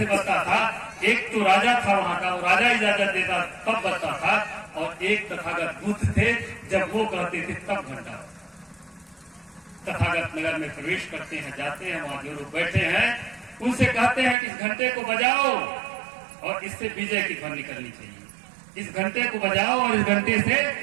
बजता था। एक तो राजा था वहां का, वो राजा इजाजत देता तब बजता था, और एक तथागत बुद्ध थे, जब वो कहते थे तब घंटा। तथागत नगर में प्रवेश करते हैं, जाते हैं, वहां जो लोग बैठे हैं उनसे कहते हैं कि इस घंटे को बजाओ और इससे विजय की ध्वनि निकलनी चाहिए। इस घंटे को बजाओ और इस घंटे से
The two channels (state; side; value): drops out; left; at 14.4 s